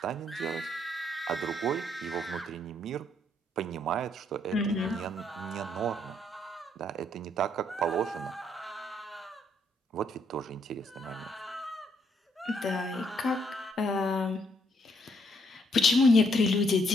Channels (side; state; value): both; normal; correlation 0.71